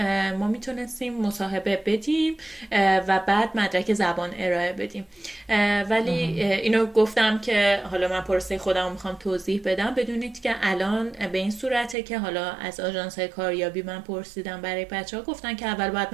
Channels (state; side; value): drops out; left; at 12.0 s